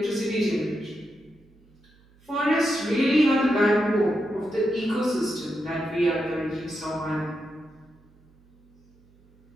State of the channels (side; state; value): right; noise; hum, 30 dB below the sound